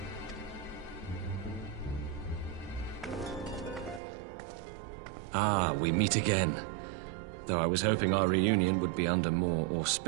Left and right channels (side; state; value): left; drops out; at 4.0 s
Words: Ah, we meet again. Though I was hoping our reunion would be under more